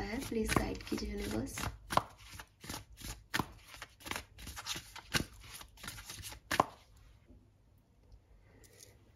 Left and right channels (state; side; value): identical; both; correlation 1.00